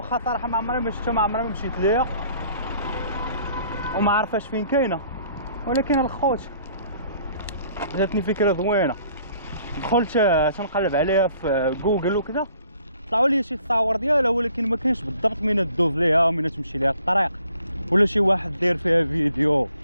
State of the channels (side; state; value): both; inverted; correlation -0.59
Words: صراحه ما عمري ما شفتها، ما عمري ما مشيت ليها وما عارفاش فين كاينه، ولكن الخوت جاتني فكره زوينه. دخلت تنقلب عليها في جوجل وكذا، طلعوا لي شي تصاور ديالها، ولكن ما كاينش بالضبط من تدوز ليها ومن تمشي ليها الطريق، ولا شي واحد داير فيها فيديو